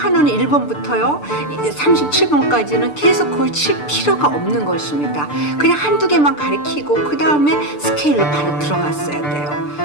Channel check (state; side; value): late; right; 6.8 ms